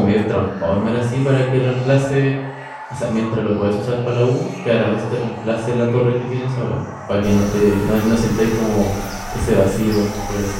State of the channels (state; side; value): identical; both; correlation 1.00